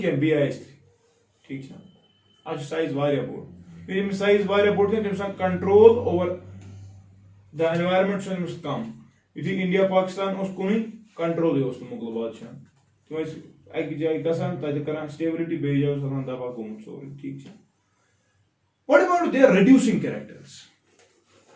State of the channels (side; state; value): both; identical; correlation 1.00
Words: क्या BiH3. ठीक है. आज साइज वारिया बोर्ड यदि साइज वारिया बोर्ड के तमस control over the environment so come. यदि इंडिया पाकिस्तान उस कुन कंट्रोल उस मुगल बादशाह तुम एक जाय गसान तत करान स्टेबिलिटी बे जाय सलान दबा गोमुत सोरी. ठीक है. What about their reducing characters?